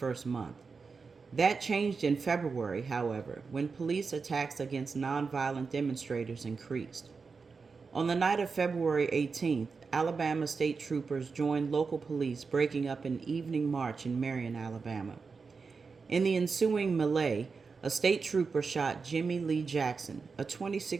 month. That changed in February, however, when police attacks against nonviolent demonstrators increased. On the night of February 18th, Alabama state troopers joined local police, breaking up an evening march in Marion, Alabama. In the ensuing melee, a state trooper shot Jimmy Lee Jackson, a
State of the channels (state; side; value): quieter; left; 4.9 dB